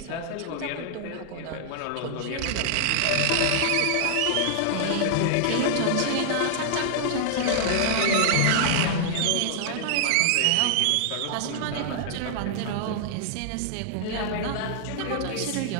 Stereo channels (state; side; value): different; both; correlation -0.01